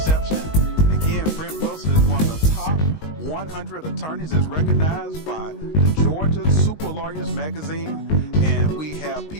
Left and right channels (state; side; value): late; right; 19 ms